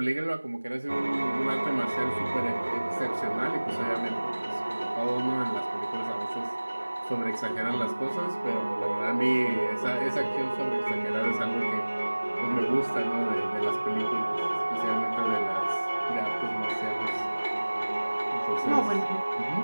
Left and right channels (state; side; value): inverted; both; correlation -1.00